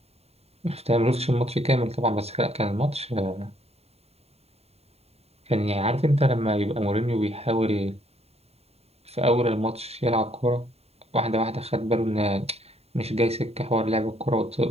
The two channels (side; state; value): left; late; 0.30 ms